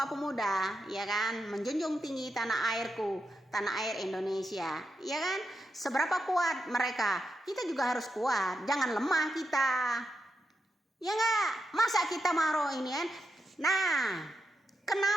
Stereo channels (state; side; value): normal; both; correlation 0.86